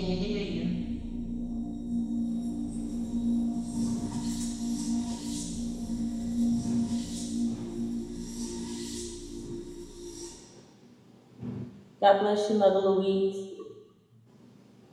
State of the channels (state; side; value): identical; both; correlation 1.00